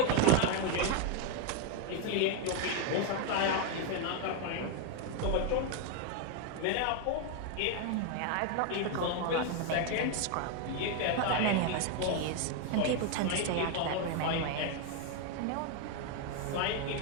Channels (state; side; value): different; both; correlation 0.01